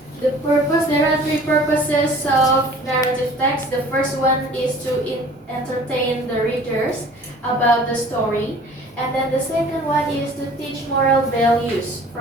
There are three purposes of narrative text. The first one is to entertain the readers about the story. And then the second one is to teach moral values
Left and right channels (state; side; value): normal; both; correlation 0.48